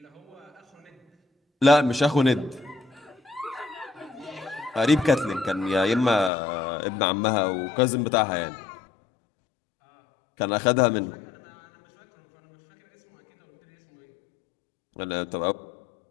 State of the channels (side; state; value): right; drops out; at 6.3 s